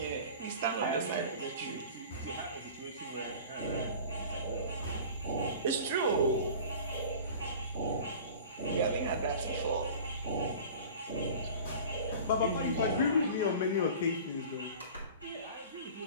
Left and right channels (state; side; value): inverted; both; correlation -0.41